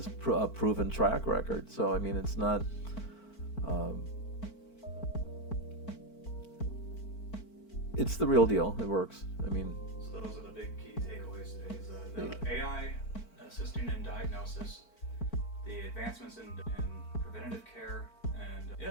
a proven track record. So, I mean, it's not... it's the real deal. It works. I mean... So those are the big key takeaways today. Is the AI assisting in diagnosis, the advancements in preventative care, and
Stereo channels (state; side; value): late; right; 4.5 ms